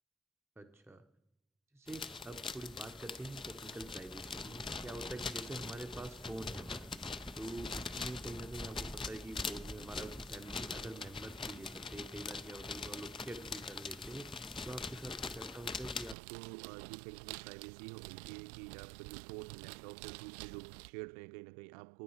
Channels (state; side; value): drops out; left; at 16.2 s